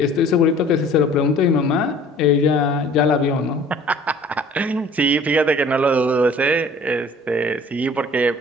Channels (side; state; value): both; normal; correlation 0.50